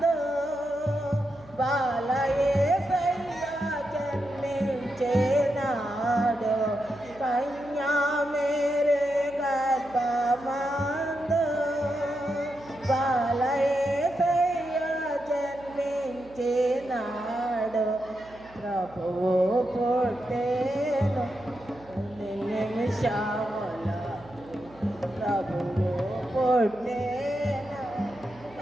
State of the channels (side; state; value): right; noise; hum, 23 dB below the sound